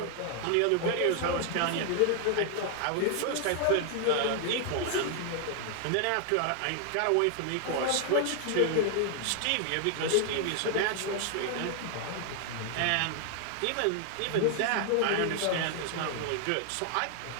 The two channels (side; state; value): both; different; correlation 0.00